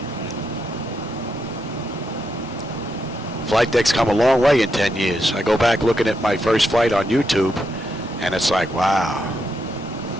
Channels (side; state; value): both; normal; correlation 0.82